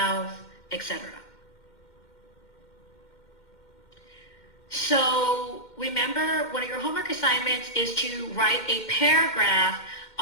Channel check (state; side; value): late; right; 2.1 ms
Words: etc. So remember, one of your homework assignments is to write a paragraph